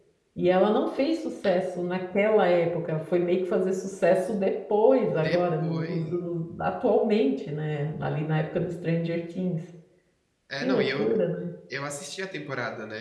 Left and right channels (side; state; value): both; identical; correlation 1.00